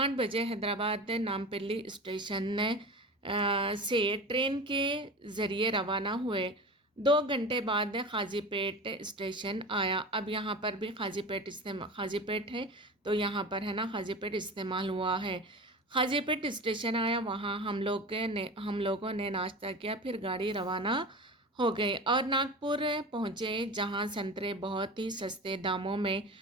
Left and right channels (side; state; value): both; normal; correlation 0.31